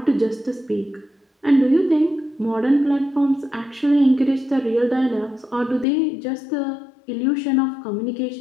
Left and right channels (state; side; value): drops out; right; at 5.9 s